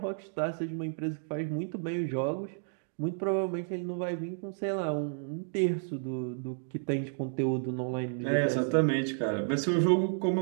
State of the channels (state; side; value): silent; left; digital silence